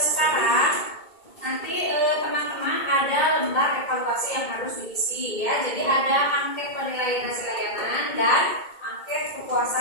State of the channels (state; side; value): late; right; 2.2 ms